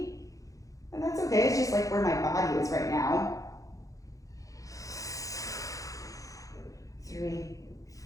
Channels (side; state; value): right; late; 0.16 ms